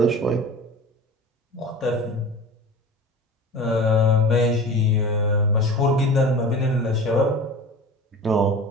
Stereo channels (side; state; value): both; normal; correlation 0.36